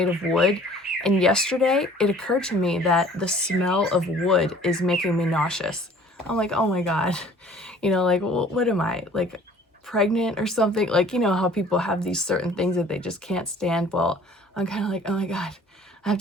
of wood. And yesterday it occurred to me that the smell of wood is making me nauseous. I'm like, oh my God, like, what am I, like pregnant or something? Like, how people have these certain things that they just can't stand. Well, I'm kind of like, oh my God, I have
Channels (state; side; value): normal; both; correlation 0.52